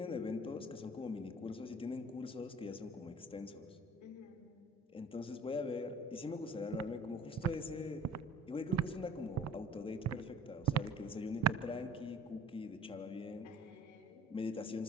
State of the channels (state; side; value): normal; both; correlation 0.49